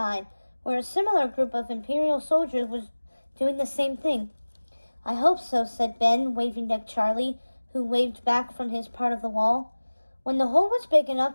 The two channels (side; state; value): both; inverted; correlation -1.00